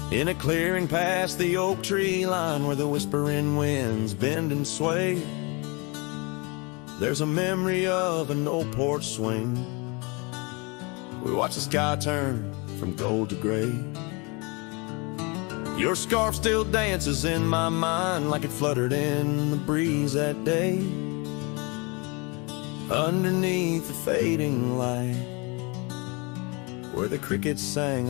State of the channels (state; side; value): quieter; right; 29.2 dB